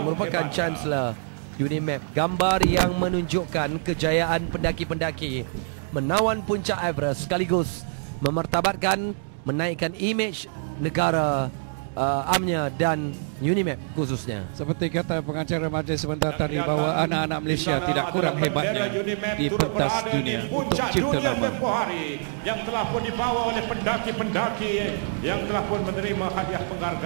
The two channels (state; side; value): silent; left; digital silence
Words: merupakan Chancellor UNIMAP. Gambar yang menunjukkan kejayaan pendaki-pendaki menawan puncak Everest sekaligus memartabatkan, menaikkan imej negara UMNO dan UNIMAP khususnya. Seperti kata pengacara majlis sebentar tadi bahawa anak-anak Malaysia tidak kurang hebatnya di pentas dunia untuk cipta nama. Yang telah pun dibawa oleh pendaki-pendaki yang telah pun menerima hadiah